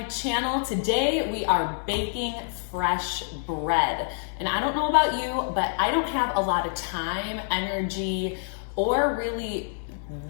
channel. Today we are baking fresh bread. And I don't know about you, but I don't have a lot of time, energy, or really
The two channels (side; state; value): right; silent; digital silence